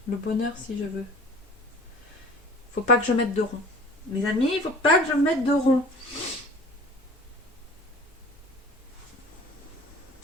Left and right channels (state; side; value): normal; both; correlation 0.44